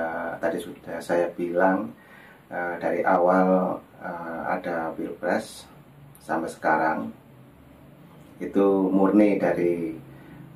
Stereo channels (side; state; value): both; identical; correlation 1.00